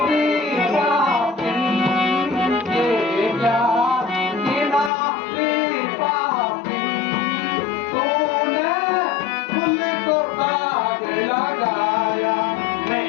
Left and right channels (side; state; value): right; drops out; at 4.9 s